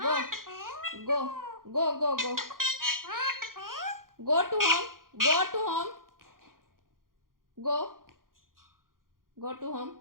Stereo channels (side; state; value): left; late; 0.91 ms